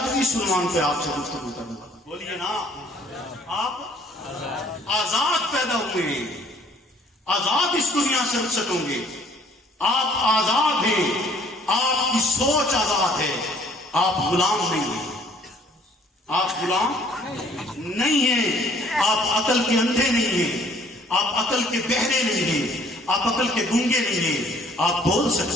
اس عنوان پہ آپ سے گفتگو کروں گا. بولیے نا, آپ آزاد پیدا ہوئے ہیں, آزاد اس دنیا سے رخصت ہوں گے, آپ آزاد ہیں, آپ کی سوچ آزاد ہے, آپ غلام نہیں ہیں, آپ غلام نہیں ہیں, آپ عقل کے اندھے نہیں ہیں, آپ عقل کے بہرے نہیں ہیں, آپ عقل کے گونگے نہیں ہیں, آپ بول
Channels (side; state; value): both; normal; correlation 0.59